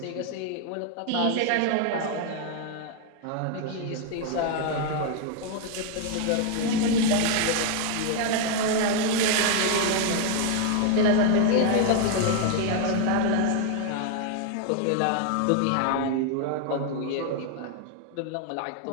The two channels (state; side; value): different; both; correlation 0.01